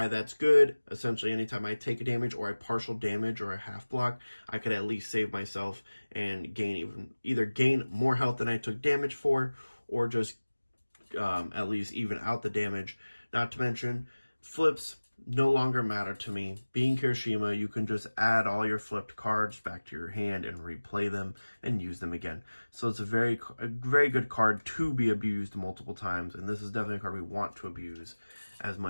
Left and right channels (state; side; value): inverted; both; correlation -1.00